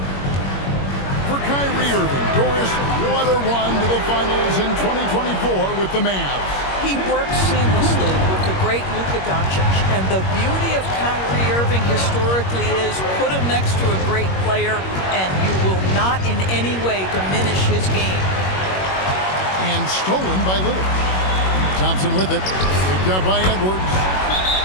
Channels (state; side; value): late; right; 21 ms